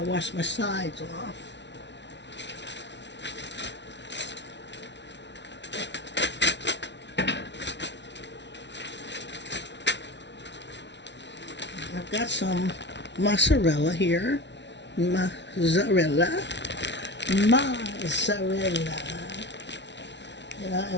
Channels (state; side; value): late; right; 0.51 ms